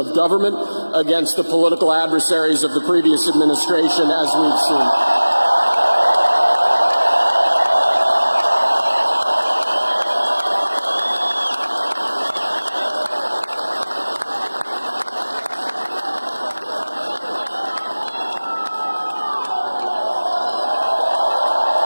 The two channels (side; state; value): both; inverted; correlation -1.00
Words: government against the political adversaries of the previous administration, as we've seen.